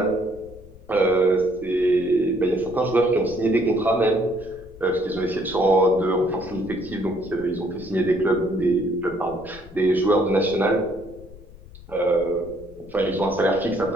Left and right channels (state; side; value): noise; left; rumble, 20 dB below the sound